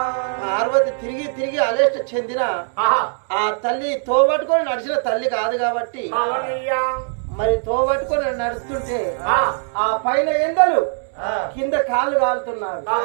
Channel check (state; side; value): silent; left; 63 dB below the other